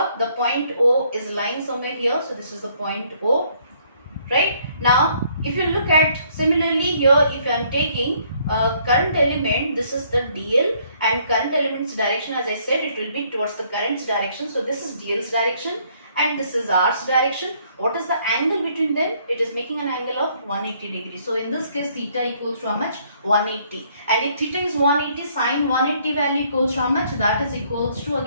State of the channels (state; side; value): inverted; both; correlation -0.65